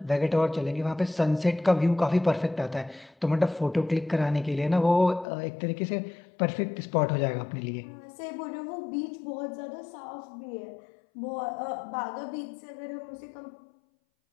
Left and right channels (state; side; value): drops out; right; at 5.2 s